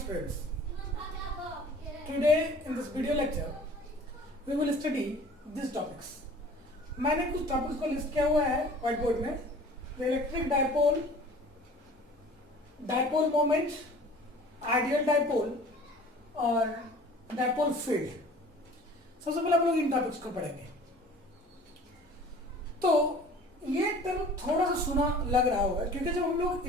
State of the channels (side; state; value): both; normal; correlation 0.47